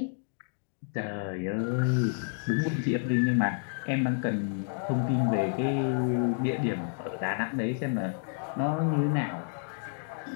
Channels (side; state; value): right; silent; digital silence